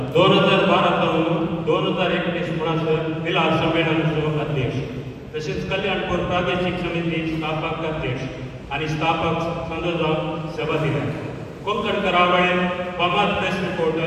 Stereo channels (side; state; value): both; identical; correlation 1.00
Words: 2012 पासून 2021 म्हणसर मिलाद संमेलनाचो अध्यक्ष तसेच कल्याणपूर प्रादेशीक समिती स्थापक अध्यक्ष आणि स्थापक संघ जावन सेवा दिल्या. कोंकण करावळें फामाद प्रेस